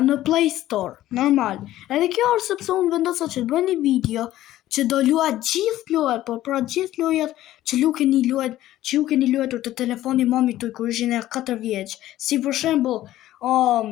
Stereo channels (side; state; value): right; quieter; 14.3 dB